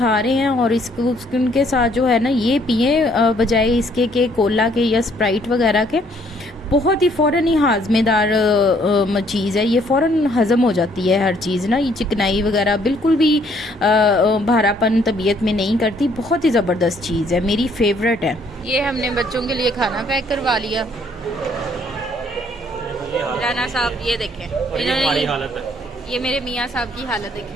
रहे हैं और इसको उनके साथ जो है ना ये पिए, बजाय इसके के कोला के या स्प्राइट वगैरह के, बहुत ही फ़ौरन ही हाजमेदार चीज़ है। ये फ़ौरन हज़म हो जाती है हर चीज़ ना, ये चिकनाई वगैरह बिल्कुल भी भारापन तबीयत में नहीं करती। बहुत ही ज़बरदस्त चीज़ है, मेरी फेवरेट है। ये हमने बच्चों के लिए खाना पैक करवा लिया। राना साहब ये देखें, इन्होंने हालत है। ये मेरे मियाँ साहब की हालत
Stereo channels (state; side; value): normal; both; correlation 0.65